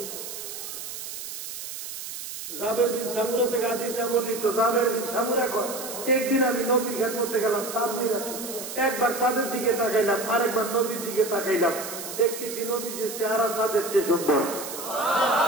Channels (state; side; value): noise; right; hiss, 9 dB below the sound